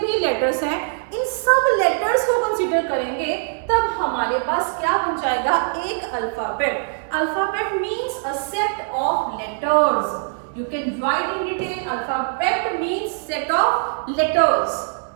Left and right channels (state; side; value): silent; left; digital silence